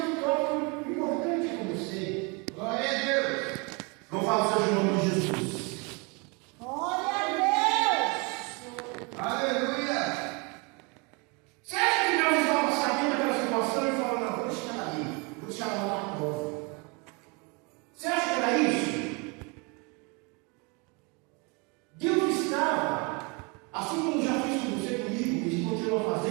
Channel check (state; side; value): quieter; left; 30.5 dB